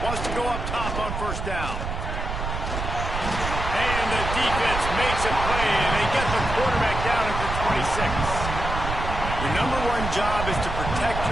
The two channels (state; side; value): noise; right; rumble, 4 dB below the sound